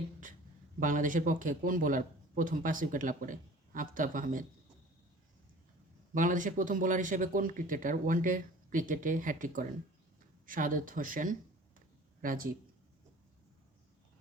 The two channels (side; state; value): both; normal; correlation 0.45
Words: বাংলাদেশের পক্ষে কোন বোলার প্রথম 5 উইকেট লাভ করে? আফতাব আহমেদ। বাংলাদেশের প্রথম বোলার হিসেবে কোন ক্রিকেটার ওয়ানডে ক্রিকেটে হ্যাটট্রিক করেন? শাহাদাত হোসেন রাজীব।